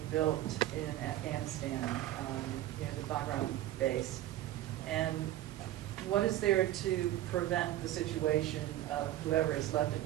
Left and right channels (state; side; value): quieter; left; 14.1 dB